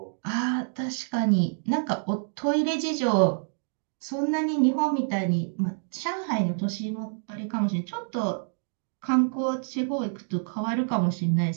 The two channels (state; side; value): silent; left; digital silence